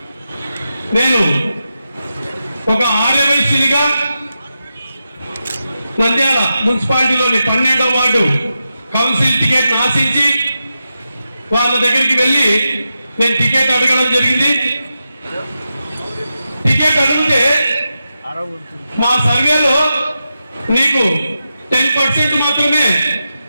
నేను ఒక ఆర్యవైశ్యునిగా నంద్యాల మున్సిపాలిటీలోని 12వ వార్డు కౌన్సిల్ టికెట్ ఆశించి వాళ్ళ దగ్గరికి వెళ్ళి నేను టికెట్ అడగడం జరిగింది. టికెట్ అడిగితే మా సర్వేలో నీకు 10% మాత్రమే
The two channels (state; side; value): inverted; both; correlation -0.89